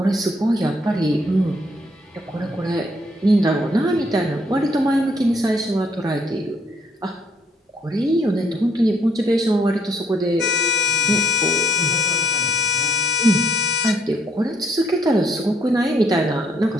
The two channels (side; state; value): both; normal; correlation 0.68